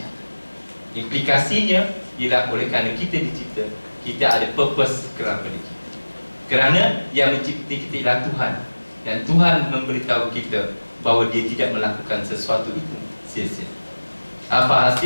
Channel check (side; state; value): both; inverted; correlation -1.00